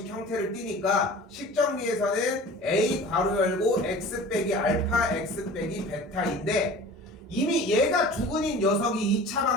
형태를 띠니까 식 정리에서는 a 괄호 열고 x 빼기 알파 x 빼기 베타인데 이미 얘가 두근인 녀석이 2차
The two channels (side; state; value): both; normal; correlation 0.41